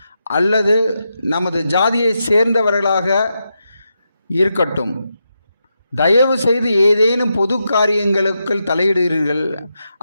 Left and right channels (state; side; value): inverted; both; correlation -0.86